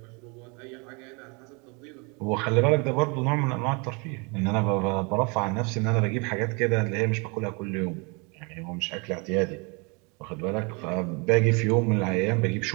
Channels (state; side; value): quieter; left; 31.1 dB